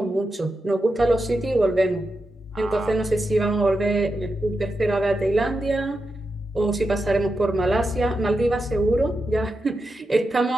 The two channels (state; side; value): normal; both; correlation 0.88